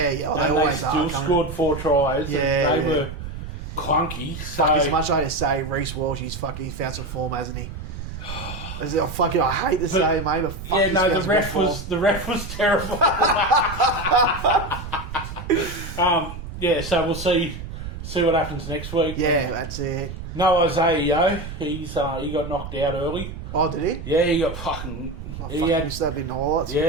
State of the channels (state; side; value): noise; right; rumble, 9 dB below the sound